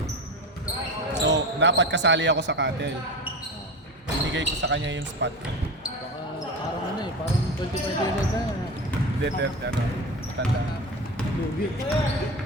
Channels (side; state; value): both; normal; correlation 0.27